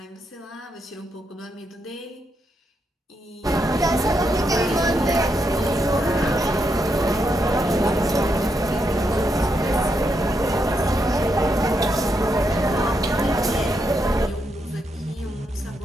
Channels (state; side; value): normal; both; correlation 0.81